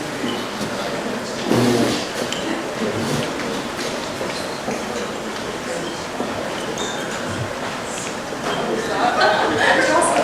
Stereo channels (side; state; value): both; identical; correlation 1.00